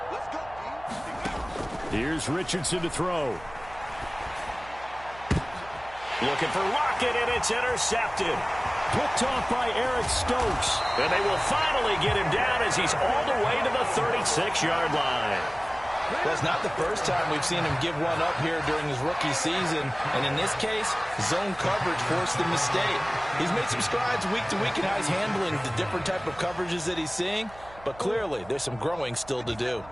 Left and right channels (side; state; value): right; noise; hum, 20 dB below the sound